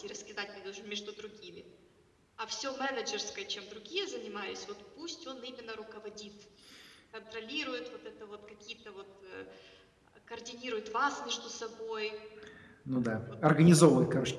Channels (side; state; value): both; identical; correlation 1.00